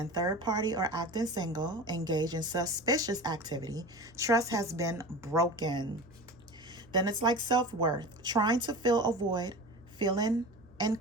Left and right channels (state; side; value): noise; right; hum, 27 dB below the sound